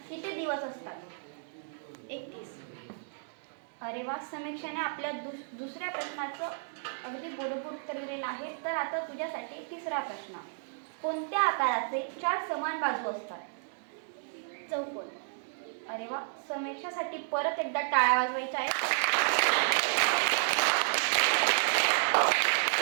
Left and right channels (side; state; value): left; silent; digital silence